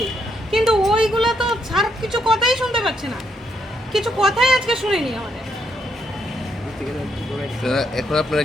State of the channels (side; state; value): both; normal; correlation 0.76